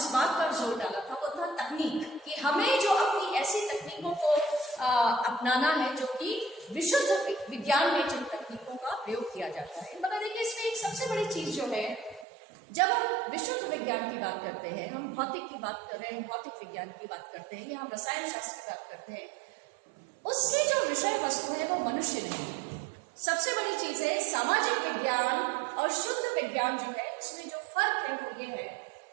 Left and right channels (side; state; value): left; drops out; at 12.2 s